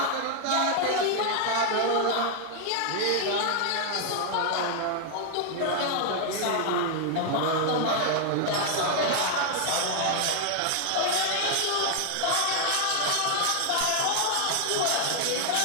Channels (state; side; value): different; both; correlation 0.00